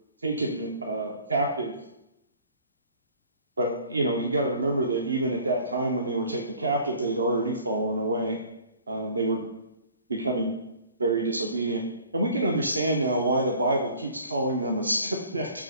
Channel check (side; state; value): both; inverted; correlation -0.51